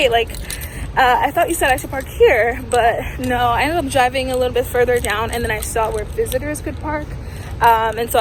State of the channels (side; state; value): both; identical; correlation 1.00